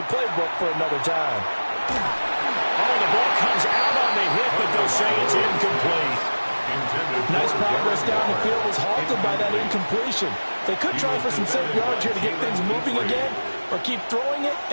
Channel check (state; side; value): inverted; both; correlation -1.00